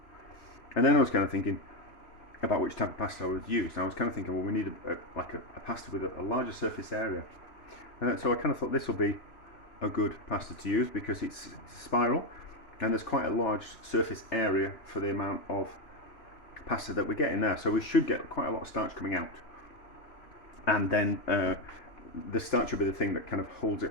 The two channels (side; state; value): right; late; 2.9 ms